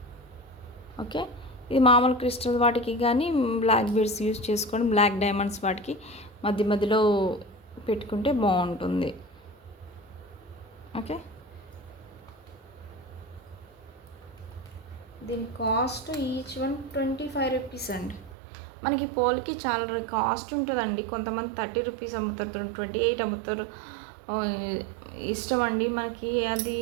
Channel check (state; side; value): drops out; left; at 18.4 s